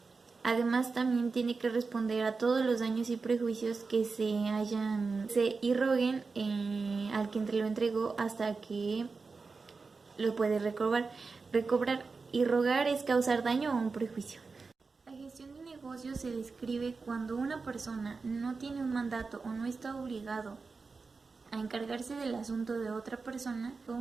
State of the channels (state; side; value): quieter; left; 4.4 dB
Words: Además, también tiene que responder a todos los daños y prejuicios que se irroguen al que lo entregó hasta que lo puede recobrar. Irrogar es causar daño o un prejuicio. La gestión de negocios se describe cuando una persona no tiene un mandato o no está obligado a encargarse del asunto de otra persona